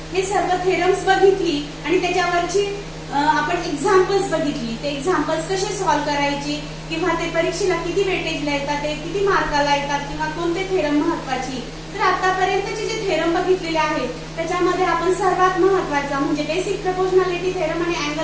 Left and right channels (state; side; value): identical; both; correlation 1.00